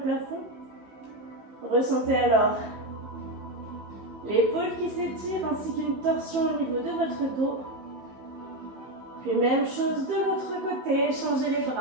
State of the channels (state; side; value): late; left; 15 ms